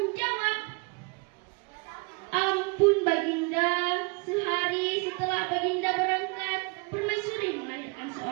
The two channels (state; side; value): quieter; left; 30.6 dB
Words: "Ampun Baginda, sehari setelah Baginda berangkat, permaisuri melahirkan